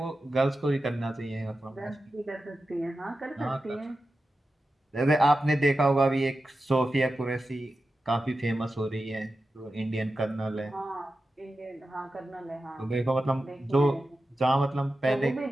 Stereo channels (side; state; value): both; normal; correlation 0.92